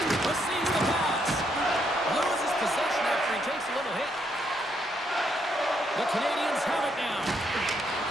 Receives the pass. Loses possession after he takes a little hit. The Canadiens have it now.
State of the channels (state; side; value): normal; both; correlation 0.75